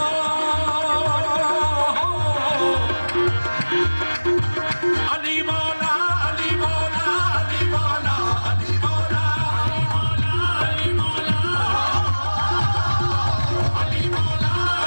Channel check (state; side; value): inverted; both; correlation -1.00